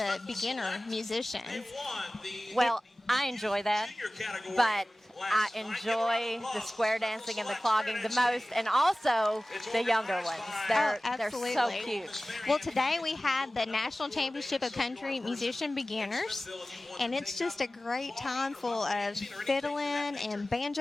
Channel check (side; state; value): both; normal; correlation 0.97